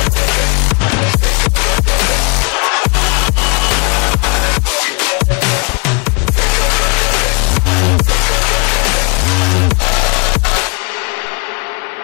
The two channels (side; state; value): right; quieter; 31.9 dB